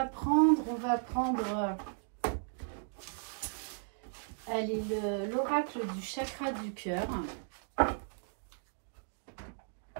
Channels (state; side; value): silent; left; digital silence